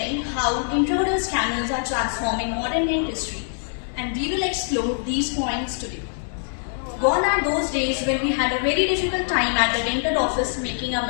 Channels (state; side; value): silent; right; digital silence